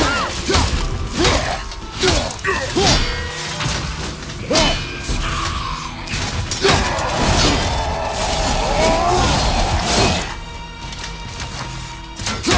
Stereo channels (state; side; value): identical; both; correlation 1.00